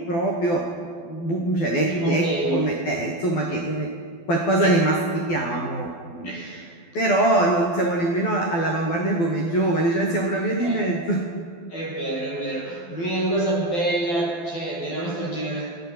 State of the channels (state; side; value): late; right; 12 ms